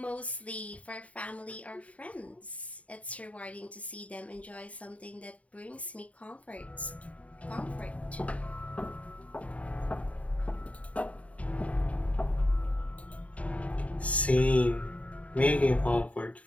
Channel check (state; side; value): late; right; 0.067 ms